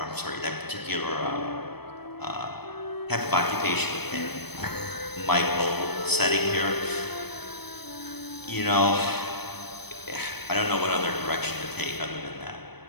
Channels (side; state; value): right; late; 0.97 ms